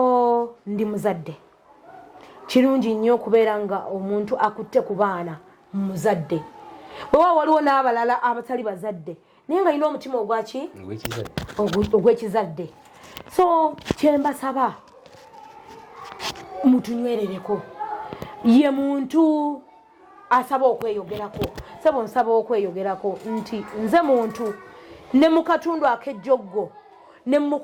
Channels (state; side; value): identical; both; correlation 1.00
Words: ndi muzadde. Kirungi nnyo okubeera nga omuntu akutte ku baana muzadde. Bwewa waliwo n'abalala abatali bazadde naye nga alina omutima ogwaki ogw'ekizadde. So kyembasaba mutunywerereko ye muntu asaba okweyogerako sebo nsaba okweyogerako nti nze muntu ne mu katundu ak'ejjoggo ne mu